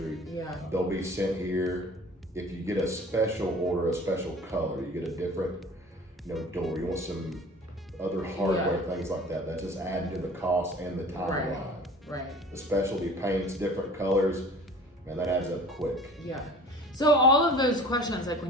Yeah. They'll be sent here. If you get a special order, a special color, you get a different, you know, door. You want some other hardware, things like that. That's just added to the cost and the timeline. Right. The specialty paints, different colors, man, that adds up quick. Yeah. So all of those questions, like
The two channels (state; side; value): normal; both; correlation 0.44